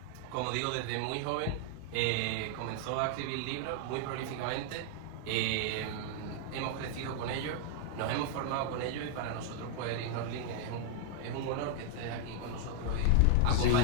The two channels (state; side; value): different; both; correlation 0.00